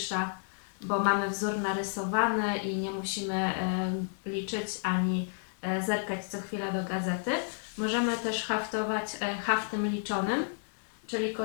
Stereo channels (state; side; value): silent; right; digital silence